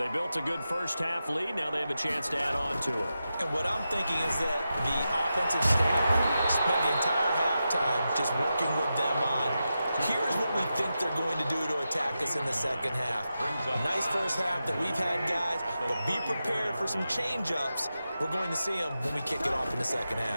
built a good first half lead. Now they have a chance to add on to it. And what I'm thinking is that the offensive staff spent the entire halftime just working with them on, here's what we think they're going to do to attack us in the second half. Nice first half that we've had, guys, but be prepared for some change-ups. We're going to see them when we kick it off in the second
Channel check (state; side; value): inverted; both; correlation -0.90